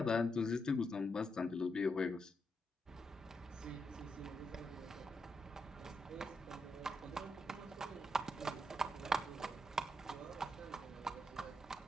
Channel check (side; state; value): both; normal; correlation 0.82